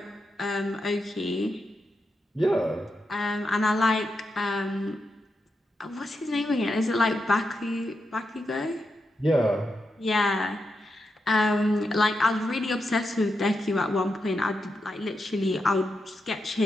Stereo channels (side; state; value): both; normal; correlation 0.86